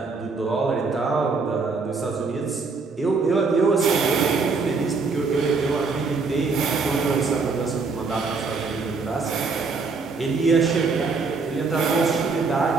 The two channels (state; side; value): quieter; left; 4.4 dB